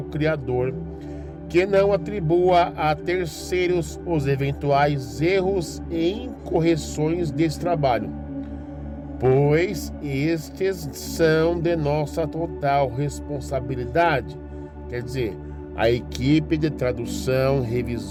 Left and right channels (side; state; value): both; identical; correlation 1.00